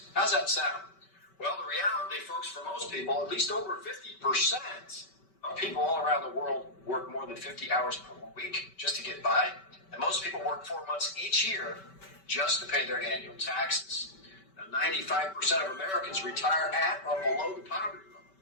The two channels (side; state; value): right; late; 5.2 ms